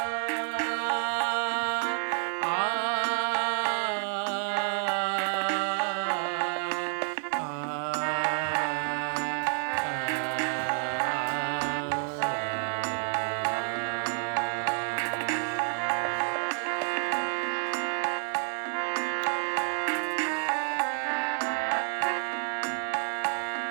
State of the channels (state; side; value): silent; left; 58 dB below the other